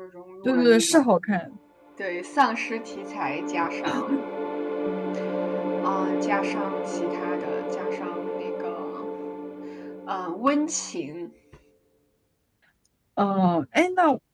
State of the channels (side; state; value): both; identical; correlation 1.00